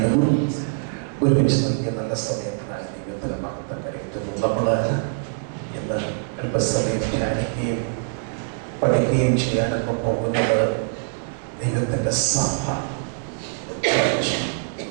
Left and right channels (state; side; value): silent; left; 63 dB below the other